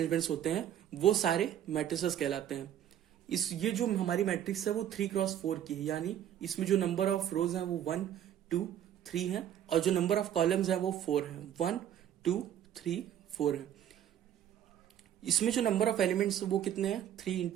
होते हैं वो सारे मैट्रिसेस कहलाते हैं. ये जो हमारी मैट्रिक्स है वो 3x4 की है, यानी इसमें जो नंबर ऑफ रोज हैं वो 1, 2, 3 है और जो नंबर ऑफ कॉलम्स हैं वो 4 है. 1, 2, 3, 4 है. इसमें जो नंबर ऑफ एलिमेंट्स वो कितने हैं? 3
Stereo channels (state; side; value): quieter; left; 10.5 dB